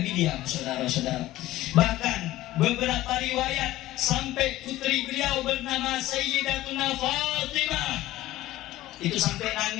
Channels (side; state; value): right; quieter; 15.9 dB